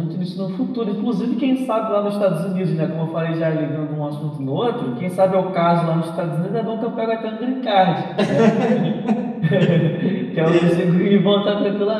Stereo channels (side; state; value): both; identical; correlation 1.00